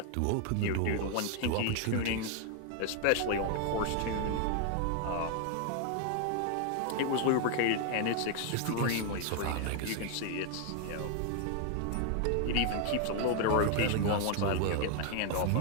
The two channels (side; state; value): both; different; correlation 0.00